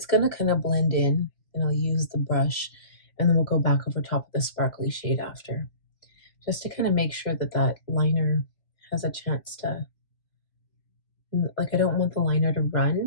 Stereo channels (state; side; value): late; right; 2.1 ms